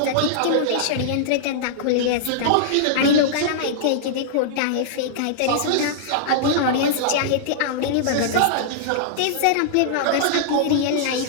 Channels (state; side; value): different; both; correlation -0.02